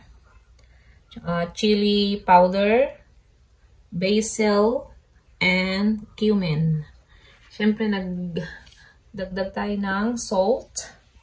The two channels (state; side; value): identical; both; correlation 1.00